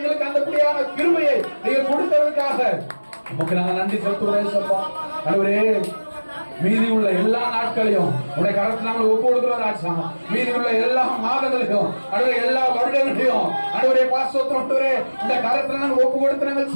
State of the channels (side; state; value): both; inverted; correlation -1.00